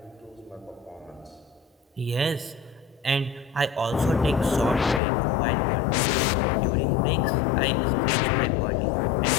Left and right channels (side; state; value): right; drops out; at 5.0 s